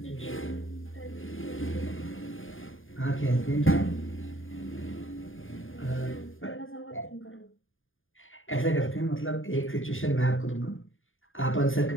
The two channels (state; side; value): late; right; 0.59 ms